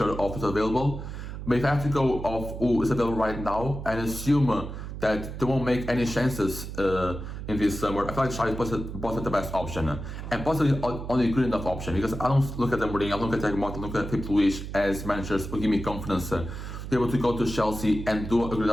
of what's available. But if I have to go off who is available right now and assume that they won't make any chances in this summer, I feel like Xavi is the best option, and possibly only good enough option, because I don't look at them Mourinho, I don't look at Thiago Motta, I look at Filipe Luis as managers who give me confidence to be able to go to Chelsea and do a good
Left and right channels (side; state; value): right; noise; hum, 8 dB below the sound